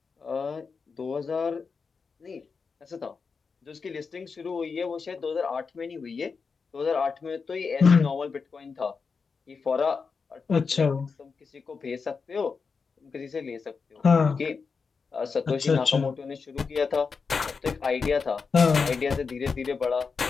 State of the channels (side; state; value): right; quieter; 5.1 dB